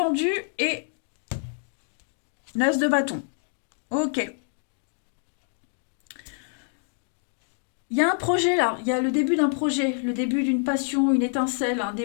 et l'as de bâton. Ok. Il y a un projet là, il y a le début d'un projet, le début d'une passion, une étincelle, un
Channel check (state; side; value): silent; right; 60 dB below the other